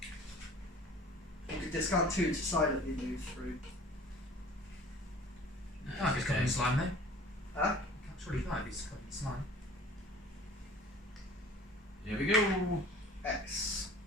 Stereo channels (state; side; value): normal; both; correlation 0.47